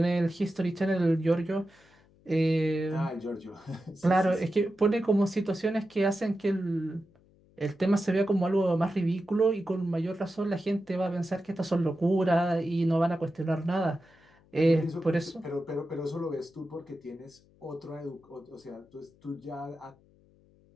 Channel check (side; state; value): left; noise; hum, 30 dB below the sound